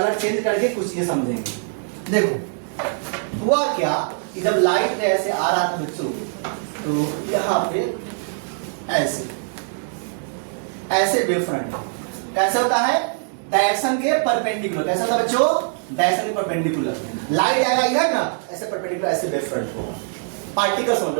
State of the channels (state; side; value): silent; left; digital silence